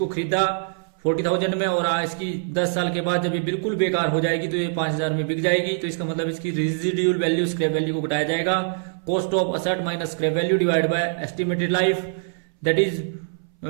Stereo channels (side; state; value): left; silent; 60 dB below the other